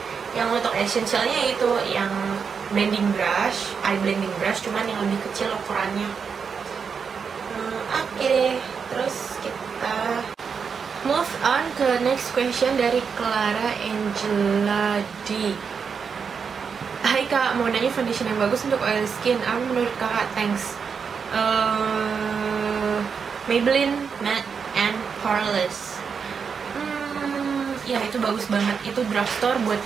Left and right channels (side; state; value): left; quieter; 6.1 dB